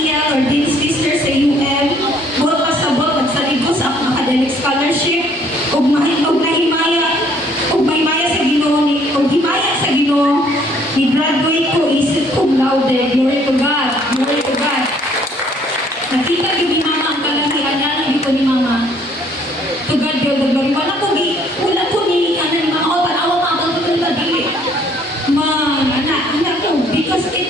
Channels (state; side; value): normal; both; correlation 0.62